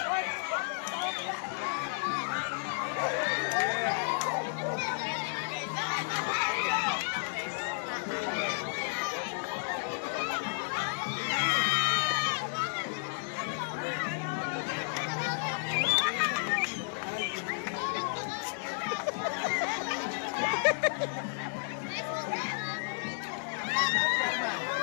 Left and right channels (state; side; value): silent; right; digital silence